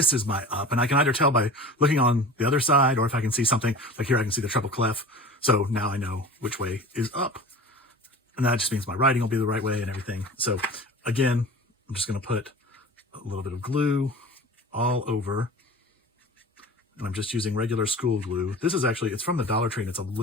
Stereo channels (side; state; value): both; normal; correlation 0.37